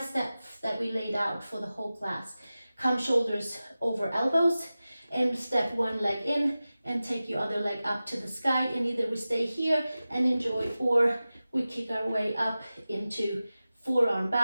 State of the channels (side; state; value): both; inverted; correlation -0.95